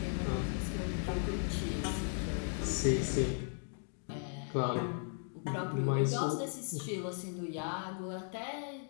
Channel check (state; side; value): silent; right; 53 dB below the other